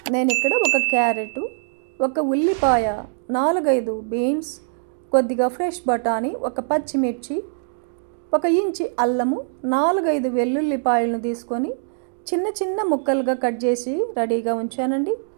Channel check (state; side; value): silent; left; digital silence